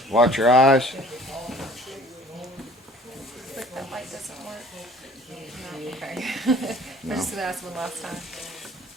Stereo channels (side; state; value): both; normal; correlation 0.50